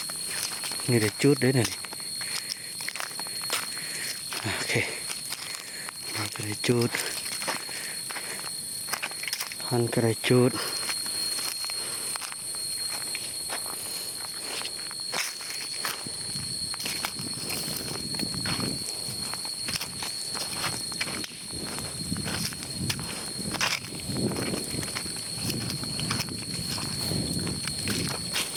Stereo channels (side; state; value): both; identical; correlation 1.00